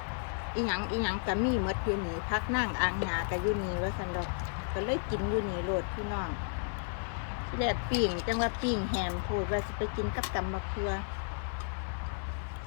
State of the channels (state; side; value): silent; right; 56 dB below the other